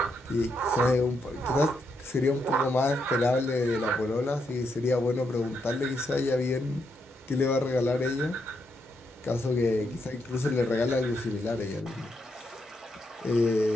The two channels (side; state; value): both; normal; correlation 0.80